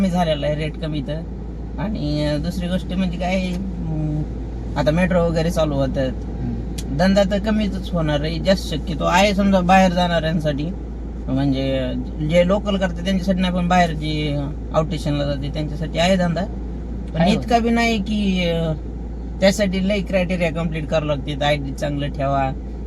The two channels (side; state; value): both; identical; correlation 1.00